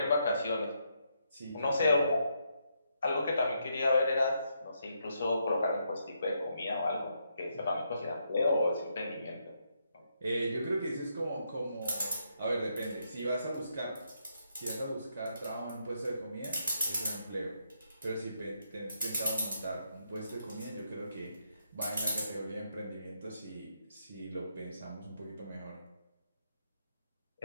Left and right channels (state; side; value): inverted; both; correlation -0.78